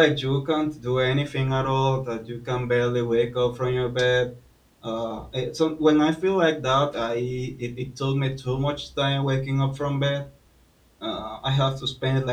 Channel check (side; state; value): both; identical; correlation 1.00